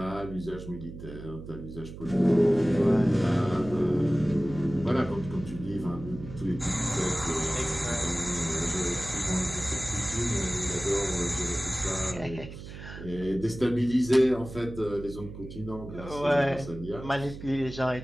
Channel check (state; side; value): noise; right; hum, 12 dB below the sound